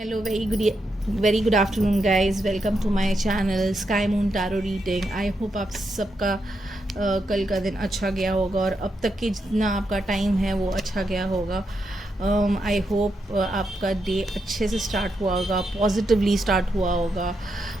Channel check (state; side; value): normal; both; correlation 0.83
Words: very good afternoon, guys. Welcome to my channel Sky Moon Tarot Reading. I hope आप सबका कल का दिन अच्छा गया होगा और अब तक के जितना आपका टाइम है वो अच्छा गया होगा. आई होप आपका डे अच्छे से स्टार्ट हुआ होगा, पॉजिटिवली स्टार्ट हुआ होगा.